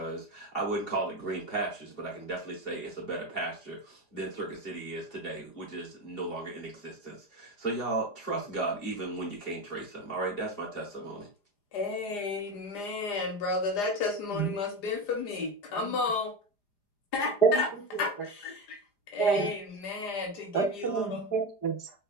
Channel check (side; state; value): right; late; 4.9 ms